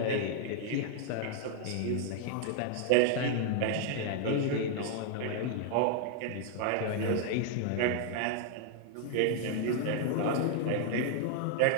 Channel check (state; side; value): different; both; correlation 0.00